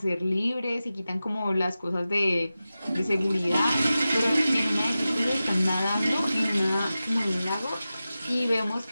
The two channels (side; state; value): both; inverted; correlation -0.94